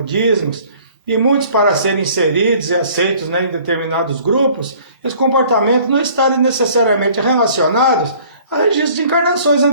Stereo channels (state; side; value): inverted; both; correlation -0.53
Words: e muitos para serem inseridos e aceitos, né, em determinados grupos, esses comportamentos não estarem necessariamente relacionados a registros de encarnações